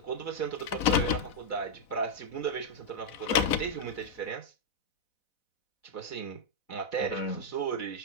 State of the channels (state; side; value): late; right; 4.0 ms